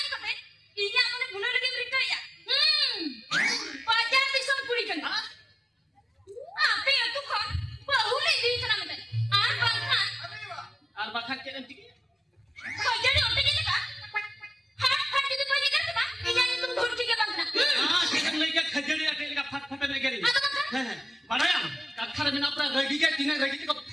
kate, ini amane bunuh lagi mereka ya. Pajar bisa puri kan? Apa ya tuh kan? Bahulai di sana meten. Bangkan. Ar bakhan cek nanti. Pajar ni otak ini kan? Hat itu pajar kan tu kan? Ini itu dur tiga bangkan. Cek lagi khajari ate lagi fat fat lagi ni. Atau bangkan? Padahal kathar mina pra ragi ge tina ragi ko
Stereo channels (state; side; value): normal; both; correlation 0.96